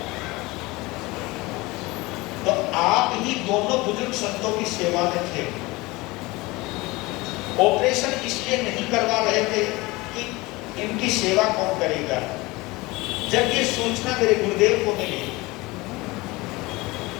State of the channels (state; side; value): quieter; right; 22.3 dB